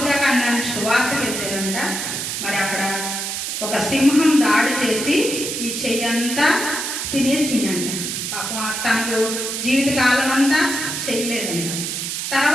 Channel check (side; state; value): right; noise; hiss, 3 dB below the sound